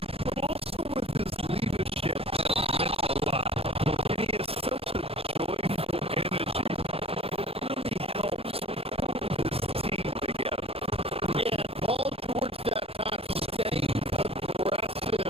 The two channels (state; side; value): late; left; 0.28 ms